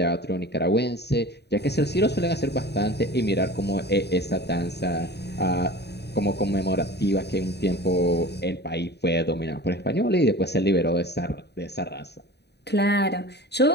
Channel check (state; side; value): late; right; 0.48 ms